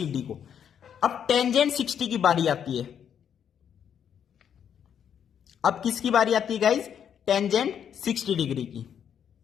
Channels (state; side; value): quieter; right; 8.5 dB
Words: डी को। अब टेंजेंट 60 की बारी आती है। अब किसकी बारी आती है गाइज, टेंजेंट 60 डिग्री की।